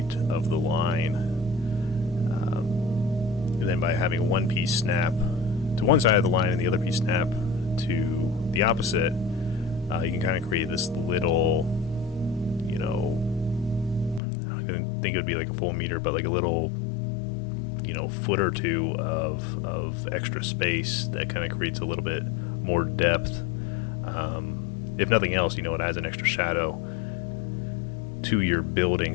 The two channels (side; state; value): right; drops out; at 14.2 s